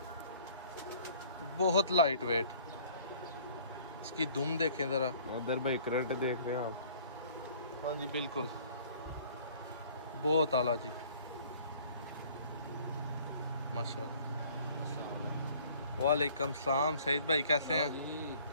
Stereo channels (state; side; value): inverted; both; correlation -0.54